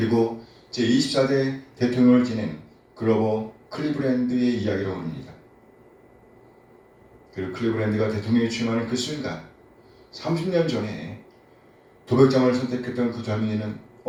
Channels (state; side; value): identical; both; correlation 1.00